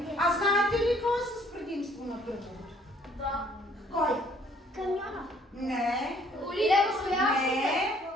А знаете ли какво е с предимство на кръговото? Да. Кой? Камиона. Не. Не.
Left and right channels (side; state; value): both; normal; correlation 0.61